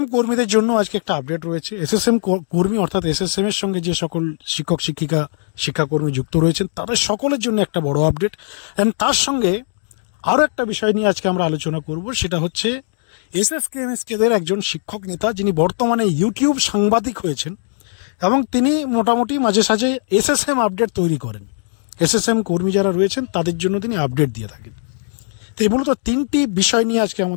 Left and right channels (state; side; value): silent; right; digital silence